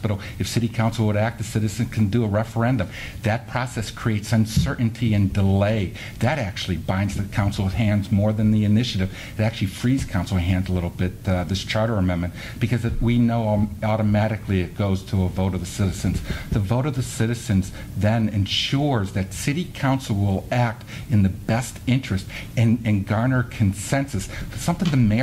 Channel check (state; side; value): identical; both; correlation 1.00